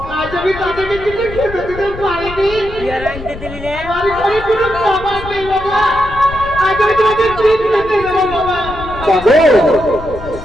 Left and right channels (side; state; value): left; noise; rumble, 12 dB below the sound